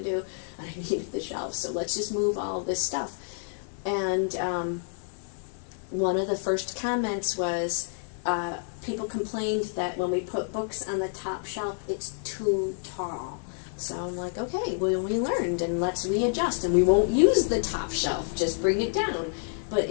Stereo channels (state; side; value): silent; right; 59 dB below the other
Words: do, and I needed the shelves, so let's just move all of this stuff. And one of the first comments was, people complained that when we put books on the top shelf, it's too tall. So I'm like, okay, well, we learned, and let's readjust, and we won't use the top shelf, just bring it down. But